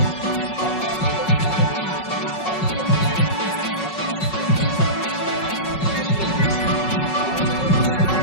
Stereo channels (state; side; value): late; right; 5.4 ms